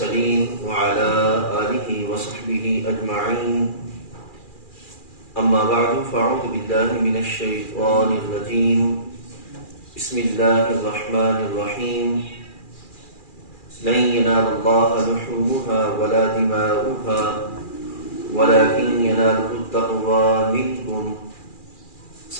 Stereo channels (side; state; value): right; late; 2.4 ms